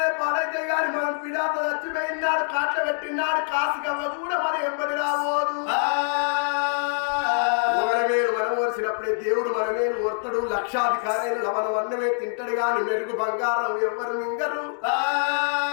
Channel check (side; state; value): right; silent; 62 dB below the other